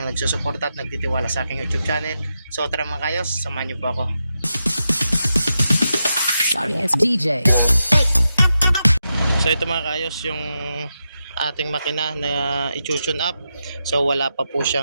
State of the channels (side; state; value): both; inverted; correlation -0.88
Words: nagsusuporta at nagtitiwala sa aking YouTube channel. So tara mga kayos, samahan niyo po ako. Sorry, it's DJ. So ito mga kaayos yung ating makina na i-tune up. So wala pa po